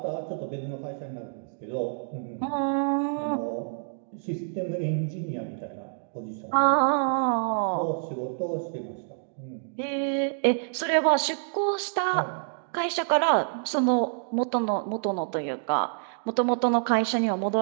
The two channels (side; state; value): left; silent; digital silence